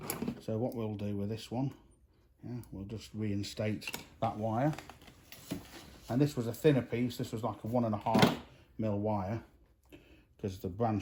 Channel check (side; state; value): both; identical; correlation 1.00